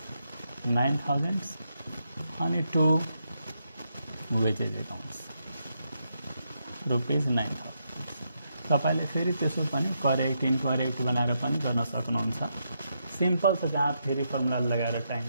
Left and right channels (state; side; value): inverted; both; correlation -0.81